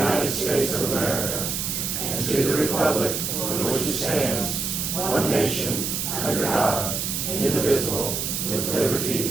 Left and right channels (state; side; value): noise; right; hiss, 2 dB below the sound